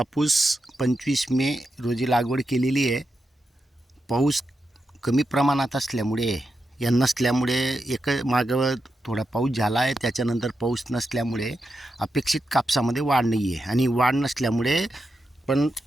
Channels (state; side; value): normal; both; correlation 0.87